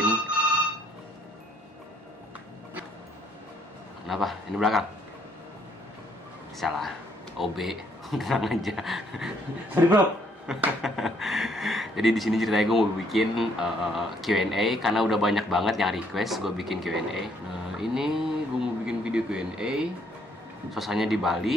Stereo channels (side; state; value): both; normal; correlation 0.68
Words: Kenapa? Ini belakang. Salah, OB. Tenang aja. Sorry bro. Jadi di sini ceritanya gue mau bikin Q&A karena udah banyak banget yang request gue bikin Q&A. Nah, ini gue mau bikin video Q&A. Suasananya di